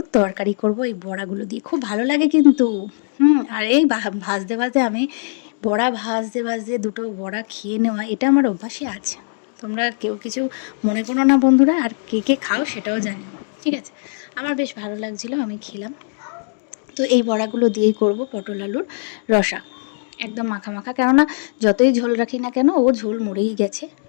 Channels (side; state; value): right; silent; digital silence